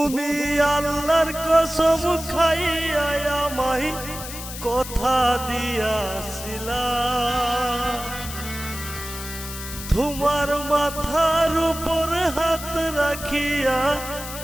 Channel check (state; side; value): noise; left; hiss, 10 dB below the sound